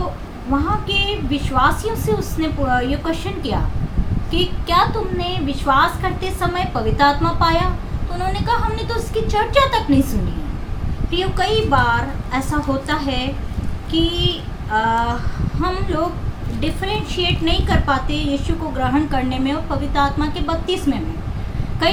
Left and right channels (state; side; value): identical; both; correlation 1.00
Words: वहाँ के विश्वासियों से उसने ये क्वेश्चन किया कि क्या तुमने विश्वास करते समय पवित्र आत्मा पाया? तो उन्होंने कहा, हमने तो उसकी चर्चा तक नहीं सुनी है। प्रियो, कई बार ऐसा होता है कि हम लोग डिफरेंशिएट नहीं कर पाते यीशु को ग्रहण करने में और पवित्र आत्मा के बपतिस्मे में।